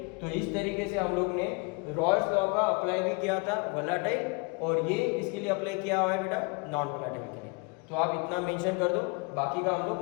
तो इस तरीके से हम लोग ने रॉल्स लॉ का अप्लाई भी किया था वोलेटाइल, और ये इसके लिए अप्लाई किया हुआ है बेटा नॉन वोलेटाइल के लिए। तो आप इतना मेंशन कर दो, बाकी का हम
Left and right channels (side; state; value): right; quieter; 31.3 dB